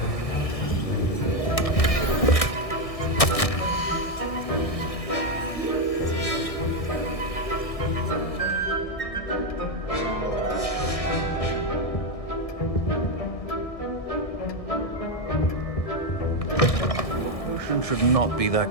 Should not be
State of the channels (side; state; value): right; late; 1.6 ms